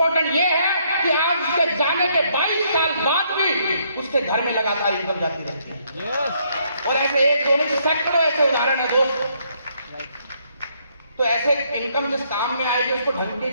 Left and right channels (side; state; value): both; inverted; correlation -0.71